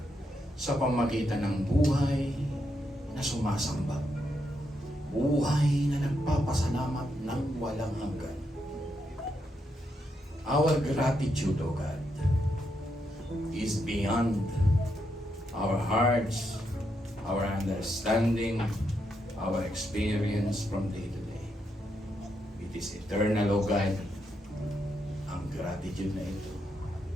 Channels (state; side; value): normal; both; correlation 0.81